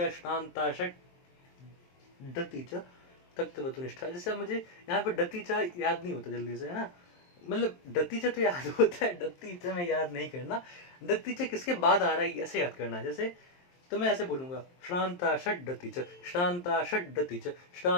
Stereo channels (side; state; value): right; late; 23 ms